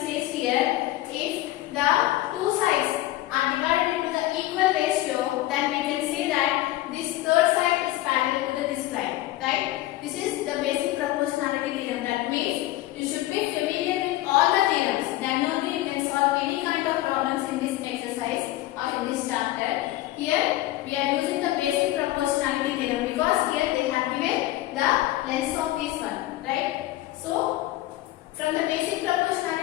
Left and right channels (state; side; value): quieter; right; 16.1 dB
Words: says here, if the two sides are divided into the equal ratio, then we can say that this third side is parallel to this line, right? This is the basic proportionality theorem. That means you should be familiar with all the theorems. Then only you can solve any kind of problems in this exercise or in this chapter. Here we are using the basic proportionality theorem because here they have given the length of this one, right? So from the basic